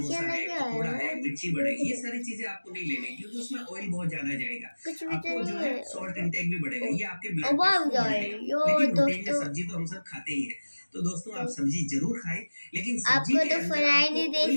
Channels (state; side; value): inverted; both; correlation -1.00